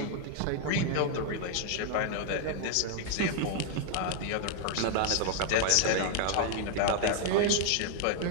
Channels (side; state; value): both; different; correlation 0.00